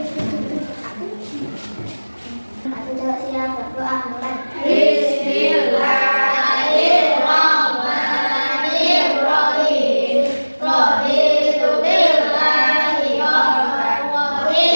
Siap berdoa mulai. Bismillahirrahmanirrahim. Raditu billahi rabban wa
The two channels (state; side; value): inverted; both; correlation -1.00